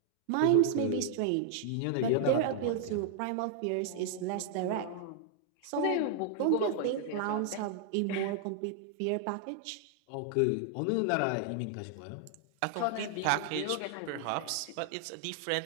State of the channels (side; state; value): both; different; correlation 0.00